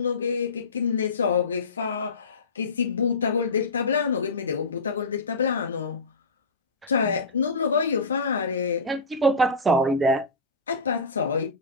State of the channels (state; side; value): quieter; right; 3.1 dB